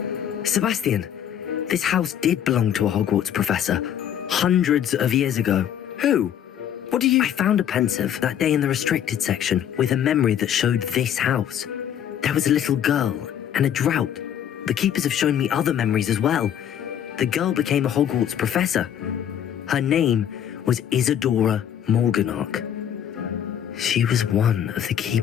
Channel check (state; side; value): quieter; right; 9.6 dB